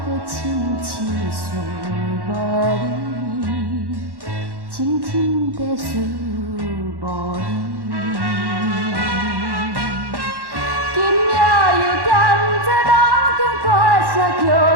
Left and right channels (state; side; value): late; left; 1.1 ms